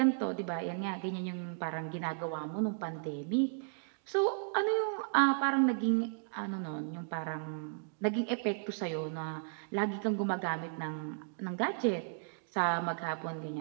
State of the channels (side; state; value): left; silent; digital silence